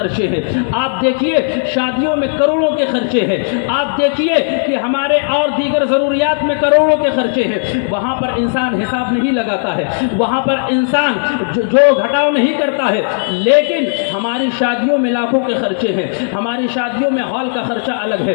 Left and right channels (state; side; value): silent; right; digital silence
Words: ہیں، آپ دیکھیے شادیوں میں کروڑوں کے خرچے ہیں، آپ دیکھیے کہ ہمارے اور دیگر ضروریات میں کروڑوں کے خرچے ہیں، وہاں پر انسان حساب نہیں لگاتا ہے، وہاں پر انسان جو گھٹاؤ نہیں کرتا ہے، لیکن ہماری شادیوں میں لاکھوں کے خرچے ہیں، ہماری شادیوں میں ہال کا خرچہ الگ ہے،